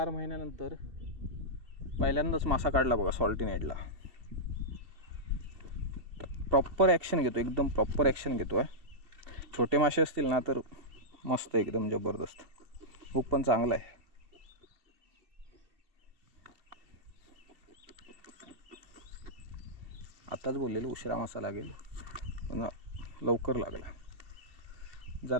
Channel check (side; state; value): left; late; 2.7 ms